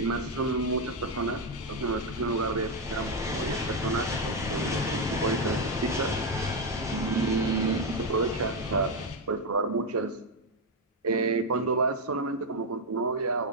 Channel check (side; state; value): both; normal; correlation 0.05